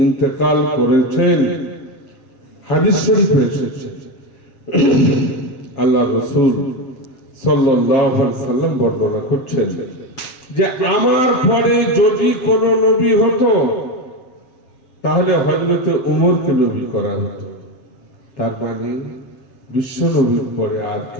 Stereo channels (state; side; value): late; right; 7.5 ms